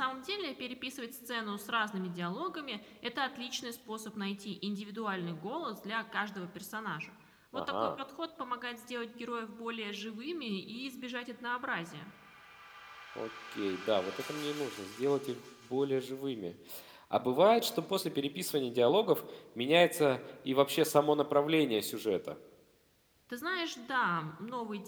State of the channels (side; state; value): both; identical; correlation 1.00